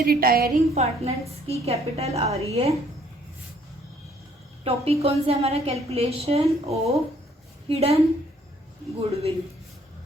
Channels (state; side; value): normal; both; correlation 0.63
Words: रिटायरिंग पार्टनर्स की कैपिटल आ रही है, टॉपिक कौन सा हमारा, कैलकुलेशन ऑफ हिडन गुडविल।